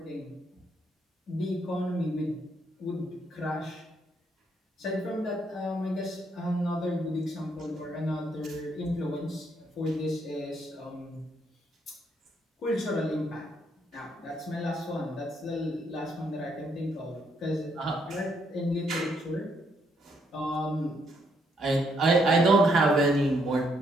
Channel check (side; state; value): both; normal; correlation 0.73